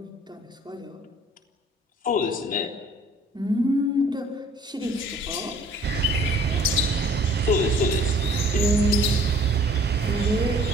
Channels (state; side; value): normal; both; correlation 0.54